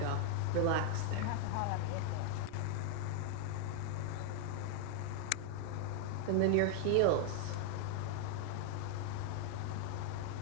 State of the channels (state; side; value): different; both; correlation 0.00